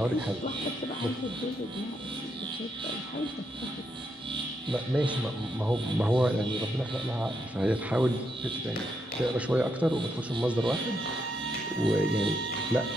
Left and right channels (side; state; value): both; normal; correlation 0.79